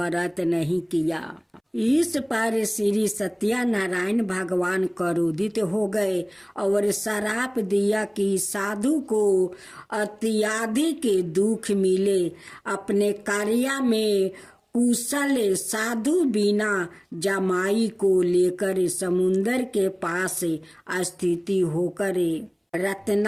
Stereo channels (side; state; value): both; identical; correlation 1.00